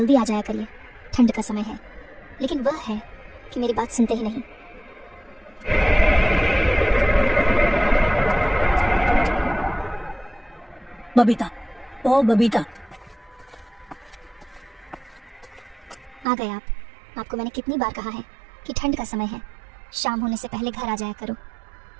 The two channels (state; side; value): drops out; left; at 16.2 s